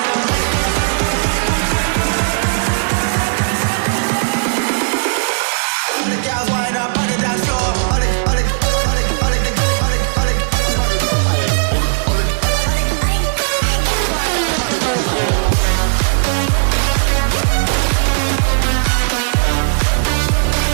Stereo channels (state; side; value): silent; left; 60 dB below the other